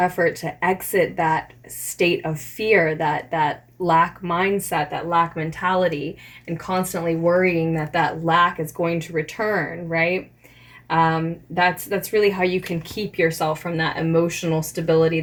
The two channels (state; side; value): identical; both; correlation 1.00